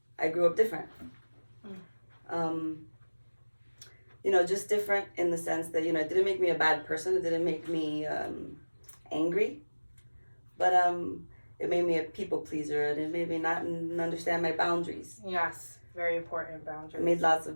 I grew up different. You know, just different in the sense that, you know, it didn't make me a bad person. It didn't make me angry. But it made me a people pleaser, and it made me not understand my boundaries. Yes, very important boundaries. I made lots of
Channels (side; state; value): both; inverted; correlation -1.00